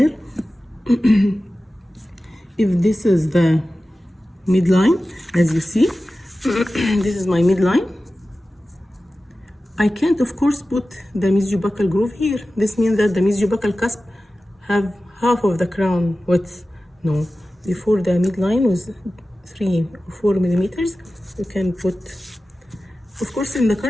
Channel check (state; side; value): normal; both; correlation 0.95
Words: if this is the midline, as you see, this is my midline. I can't, of course, put the mesiobuccal groove here. This means that the mesiobuccal cusp have half of the crown width. No, before the midline was 3 or 4 millimeters, you can put, of course, in the